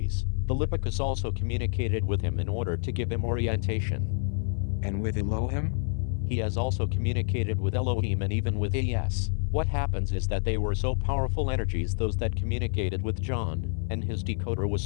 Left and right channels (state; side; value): silent; right; 56 dB below the other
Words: Philippicus also communicated with him in order to give him orientation. And with Elohim? He has also communicated with Elohim and even with AS. What happens is that they were so powerful energies, those that communicated with John, and his decoder was